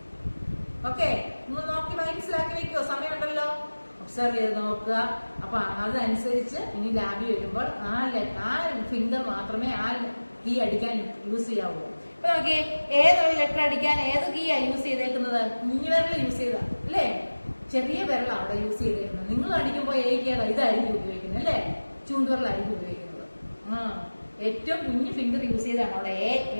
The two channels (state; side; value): inverted; both; correlation -1.00